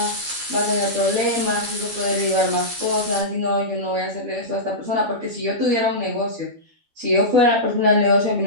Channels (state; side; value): late; left; 12 ms